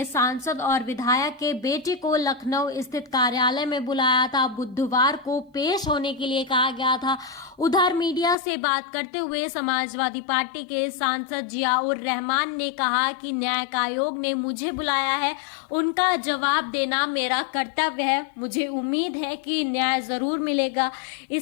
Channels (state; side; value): drops out; right; at 8.3 s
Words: सांसद और विधायक के बेटे को लखनऊ स्थित कार्यालय में बुलाया था। बुधवार को पेश होने के लिए कहा गया था। उधर मीडिया से बात करते हुए समाजवादी पार्टी के सांसद जियाउर रहमान ने कहा कि न्यायिक आयोग ने मुझे बुलाया है, उनका जवाब देना मेरा कर्तव्य है। मुझे उम्मीद है कि न्याय जरूर मिलेगा।